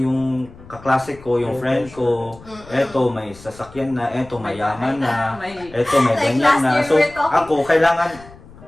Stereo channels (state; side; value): noise; left; rumble, 21 dB below the sound